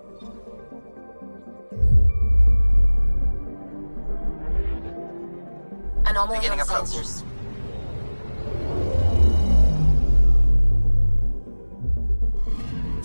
Anomaly on Beginning approach. sensors.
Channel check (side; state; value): both; inverted; correlation -1.00